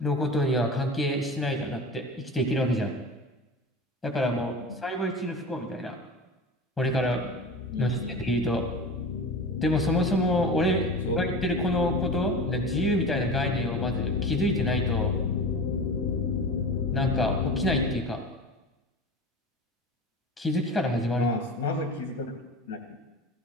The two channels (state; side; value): normal; both; correlation 0.31